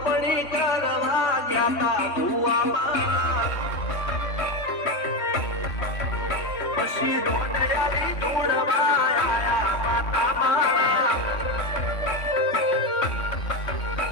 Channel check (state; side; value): late; right; 3.6 ms